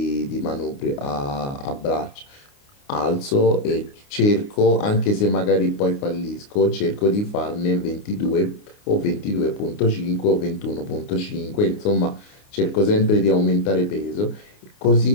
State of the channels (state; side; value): late; right; 29 ms